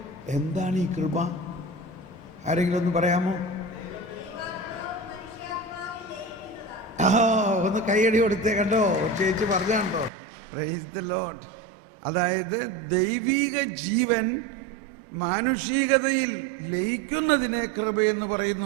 എന്താണ് ഈ കൃപ? ആരെങ്കിലും ഒന്ന് പറയാമോ? ഒന്ന് കൈയടി കൊടുത്തേ. കണ്ടോ, ചേച്ചി പറഞ്ഞാണ്ടോ? Praise the Lord. അതായത് ദൈവിക ജീവൻ മാനുഷികതയിൽ ലയിക്കുന്നതിനെ കൃപയെന്ന്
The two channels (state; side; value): drops out; left; at 10.1 s